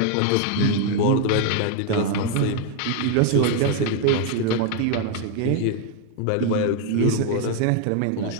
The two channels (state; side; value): different; both; correlation 0.00